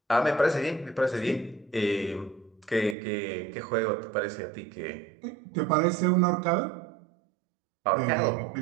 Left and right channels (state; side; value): drops out; left; at 3.0 s